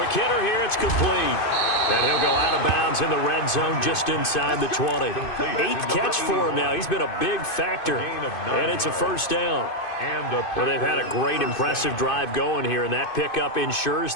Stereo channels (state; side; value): late; right; 2.5 ms